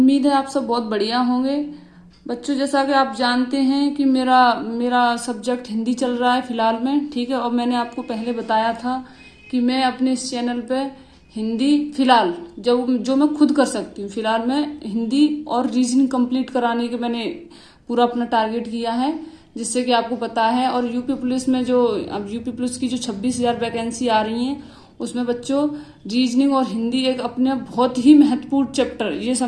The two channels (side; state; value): both; identical; correlation 1.00